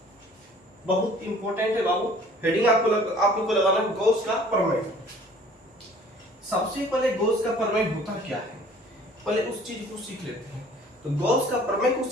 बहुत इंपॉर्टेंट है बाबू, हेडिंग आप लोग को लगाना है गॉस का प्रमेय। सबसे पहले गॉस का प्रमेय होता क्या है, पहले उस चीज को सीख लेते हैं। तो गॉस का प्रमेय को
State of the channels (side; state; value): both; normal; correlation 0.52